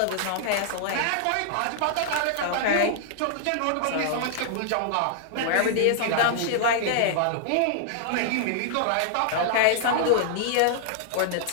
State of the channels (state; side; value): different; both; correlation -0.01